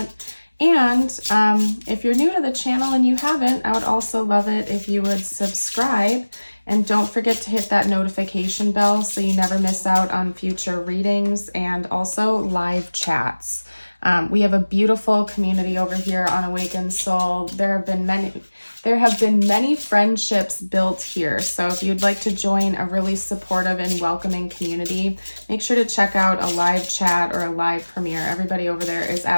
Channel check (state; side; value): inverted; both; correlation -1.00